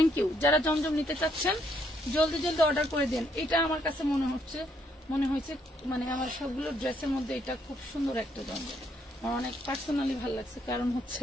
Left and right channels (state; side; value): normal; both; correlation 0.72